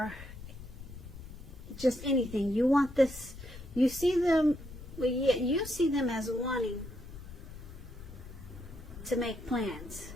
just anything. You want this, you see them, well, yeah, you see them as wanting to make plans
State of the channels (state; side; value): noise; left; rumble, 14 dB below the sound